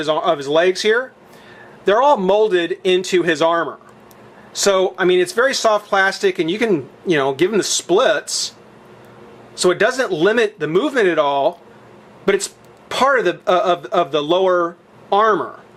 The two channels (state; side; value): identical; both; correlation 1.00